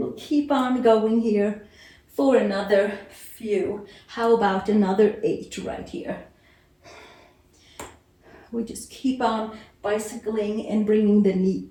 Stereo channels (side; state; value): both; identical; correlation 1.00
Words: keep on going here for another few. How about another 8 right here? We just keep on bicycling and bringing the knee